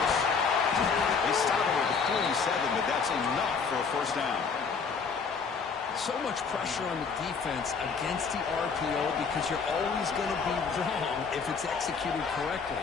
They stop him at the 47, but that's enough for a first down. So much pressure on the defense against the RPO because you're always going to be wrong if it's executed correctly.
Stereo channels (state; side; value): quieter; right; 5.5 dB